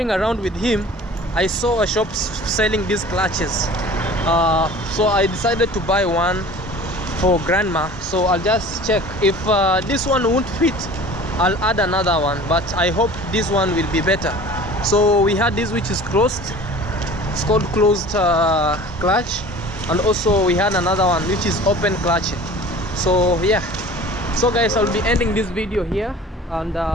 around with him, I saw a shop selling these clutches. So I decided to buy one for grandma. So I'll just check if this one won't fit, I'll add another one, but I hope this one will be better. So we had this which is closed, it's called closed clutch, and also we had another one which is open clutch. So yeah, so guys, I'll be ending this video here, and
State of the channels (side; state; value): both; normal; correlation 0.43